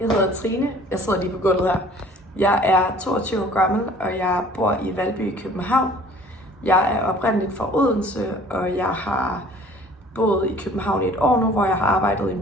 hedder Trine. Jeg sidder lige på gulvet her. Jeg er 22 år gammel, og jeg bor i Valby i København. Jeg er oprindeligt fra Odense, og jeg har boet i København i et år nu, hvor jeg har arbejdet i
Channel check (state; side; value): normal; both; correlation 0.51